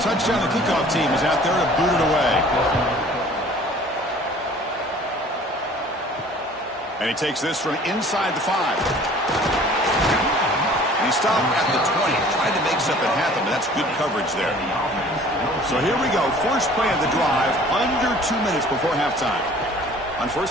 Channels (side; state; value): both; normal; correlation 0.50